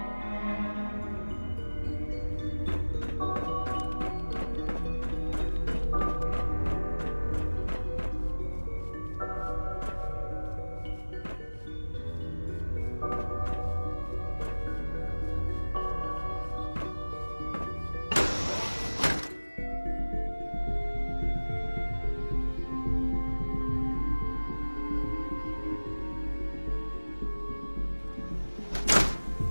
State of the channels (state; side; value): inverted; both; correlation -1.00